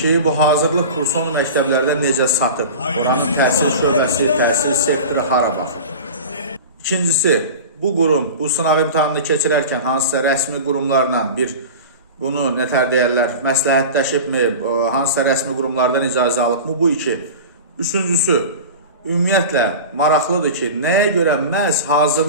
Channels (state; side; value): inverted; both; correlation -0.33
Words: bu hazırlıq kursunu məktəblərdə necə satıb, oranın təhsil şöbəsi, təhsil sektoru hara baxır. İkincisi, bu qurum bu sınaq imtahanını keçirərkən hansısa rəsmi qurumlarla bunu nətər deyərlər, məsləhətləşibmi, hansısa rəsmi qurumlardan icazə alıbmı, bu iki. Üçüncüsü, ümumiyyətlə maraqlıdır ki, nəyə görə məhz